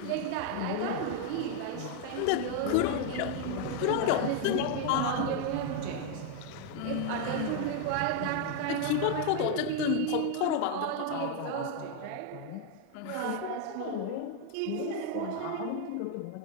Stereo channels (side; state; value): both; different; correlation 0.01